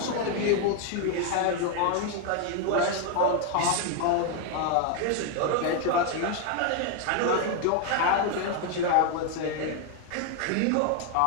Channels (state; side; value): different; both; correlation 0.01